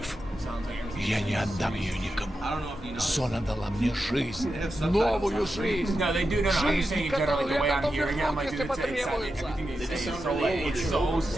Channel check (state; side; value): normal; both; correlation 0.89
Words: Я не отдам ее никому. Зона дала мне жизнь. Новую жизнь. Жизнь, которую я готов вернуть, если потребуется.